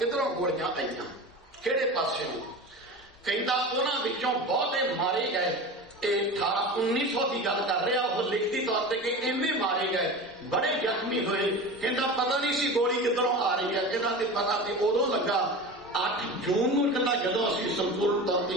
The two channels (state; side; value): normal; both; correlation 0.31